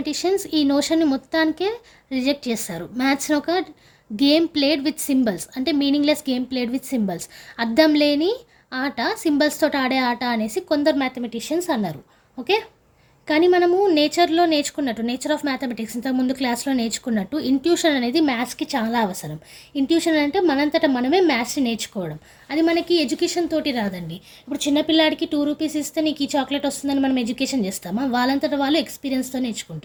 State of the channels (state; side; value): identical; both; correlation 1.00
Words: ఈ నోషన్ని మొత్తానికే రిజెక్ట్ చేస్తారు. మ్యాథ్స్ని ఒక గేమ్ ప్లేడ్ విత్ సింబల్స్, అంటే meaningless game played with symbols, అర్థం లేని ఆట, సింబల్స్ తోటి ఆడే ఆట అనేసి కొందరు మ్యాథమెటిషియన్స్ అన్నారు. ఓకే, కానీ మనము నేచర్‌లో నేర్చుకున్నట్టు, నేచర్ ఆఫ్ మ్యాథమెటిక్స్ ఇంతకుముందు క్లాస్‌లో నేర్చుకున్నట్టు ఇంట్యూషన్ అనేది మ్యాథ్స్‌కి చాలా అవసరం. ఇంట్యూషన్ అంటే మనంతట మనమే మ్యాథ్స్‌ని నేర్చుకోవడం. అది మనకి ఎడ్యుకేషన్ తోటి రాదండి. ఇప్పుడు చిన్న పిల్లాడికి రూ. 2 ఇస్తే నీకు ఈ చాక్లెట్ వస్తుందని మనం ఎడ్యుకేషన్ చేస్తామా? వాళ్ళంతట వాళ్ళు ఎక్స్‌పీరియన్స్‌తో